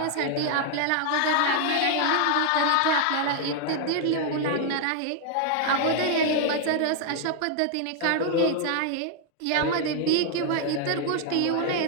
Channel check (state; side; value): different; both; correlation 0.00